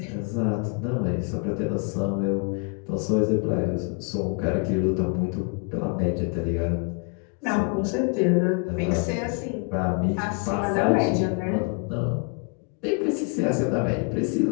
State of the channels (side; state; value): right; quieter; 34.8 dB